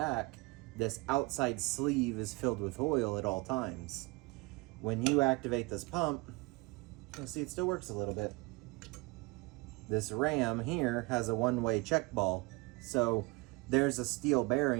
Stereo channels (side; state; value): left; quieter; 25.7 dB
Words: This outside sleeve is filled with oil at all times. When you activate this pump, you'll see it still works a little bit. This ram here has a one-way check ball. So there's a steel